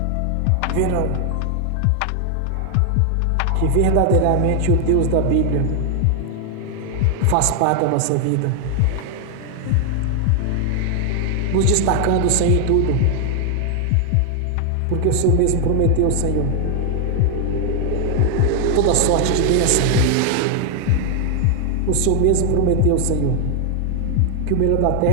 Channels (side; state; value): both; different; correlation 0.00